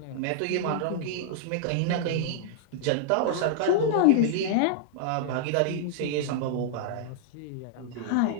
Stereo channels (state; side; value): different; both; correlation -0.01